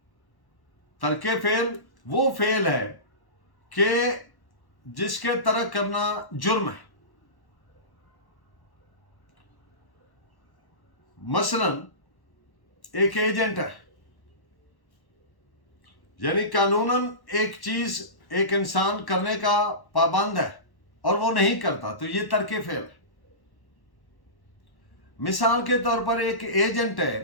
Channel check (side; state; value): right; late; 1.1 ms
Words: तर्के फेल वो फेल है कि जिसके तरक करना जुर्म है। मसलन एक एजेंट है, यानी कानूनन एक चीज एक इंसान करने का पाबंद है और वो नहीं करता, तो ये तर्के फेल है। मिसाल के तौर पर एक एजेंट